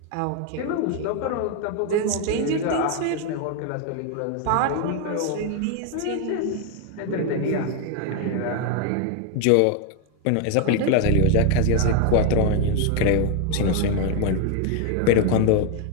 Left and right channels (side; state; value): both; different; correlation 0.01